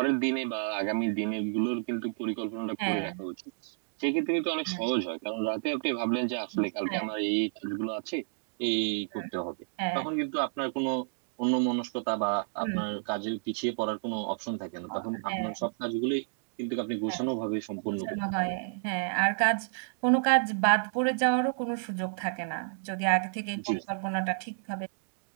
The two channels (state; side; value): silent; left; digital silence